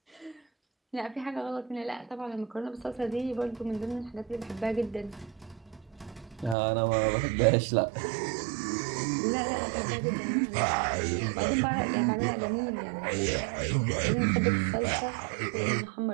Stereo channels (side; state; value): left; drops out; at 6.6 s